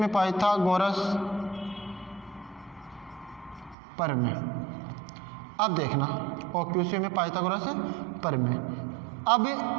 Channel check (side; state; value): left; drops out; at 3.8 s